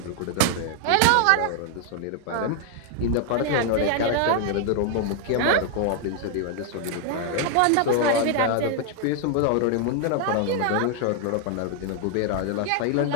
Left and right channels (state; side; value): different; both; correlation 0.00